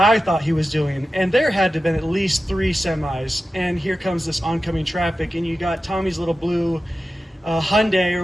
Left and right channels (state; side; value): normal; both; correlation 0.93